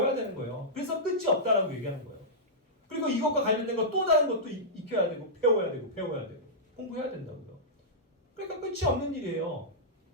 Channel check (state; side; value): normal; both; correlation -0.13